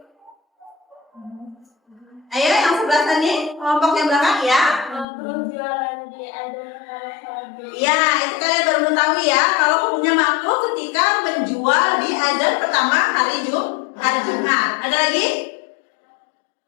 Ayo yang sebelah sini, kelompok yang belakang ya. Ya, itu kalian baru mengetahui ya kalau hukumnya makruh ketika menjual di azan pertama hari Jumat. Ada lagi?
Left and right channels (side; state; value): right; drops out; at 5.1 s